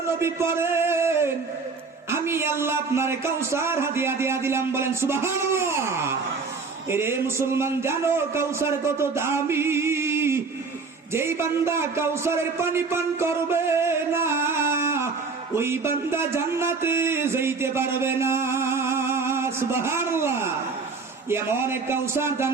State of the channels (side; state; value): left; quieter; 4.6 dB